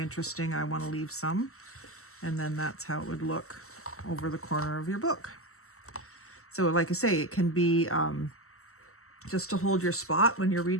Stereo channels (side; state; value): right; late; 0.63 ms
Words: I want to leave some. And then that's how it would look over the corner of your book. So like I say, it can be just to hold your spot when you're